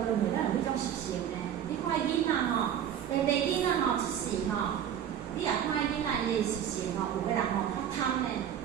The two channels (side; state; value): left; quieter; 9.5 dB